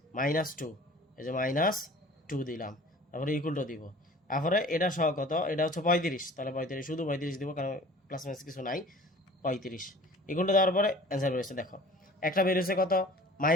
-2, এই যে -2 দিলাম, তারপরে ইকুয়াল টু দিব। তারপরে এটা সহ কত, এটা হচ্ছে 35, তাহলে 35 শুধু 35 দিব, কারণ প্লাস মাইনাস কিছু নাই, 35 ইকুয়াল টু দেওয়ার পরে অ্যান্সার বেরিয়েছে। দেখো একটা বেরিয়েছে কত,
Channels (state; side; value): normal; both; correlation 0.46